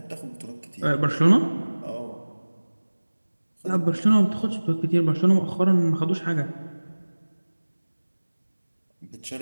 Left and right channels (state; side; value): inverted; both; correlation -1.00